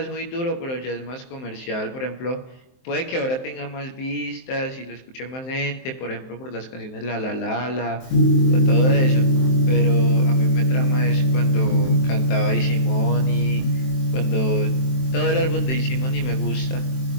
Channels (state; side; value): late; right; 23 ms